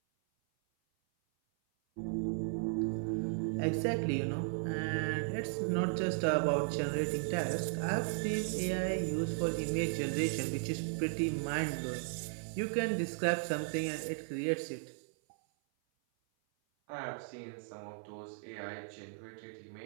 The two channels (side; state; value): left; silent; 54 dB below the other